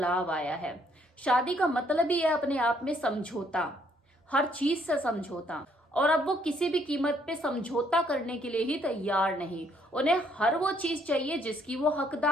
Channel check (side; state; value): both; normal; correlation 0.68